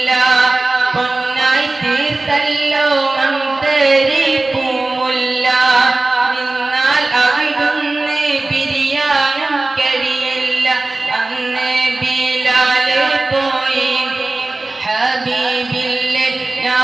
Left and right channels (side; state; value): left; quieter; 3.1 dB